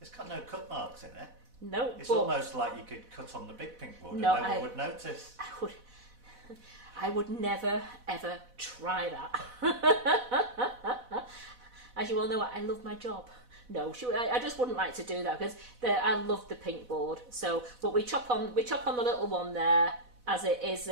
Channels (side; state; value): left; late; 4.1 ms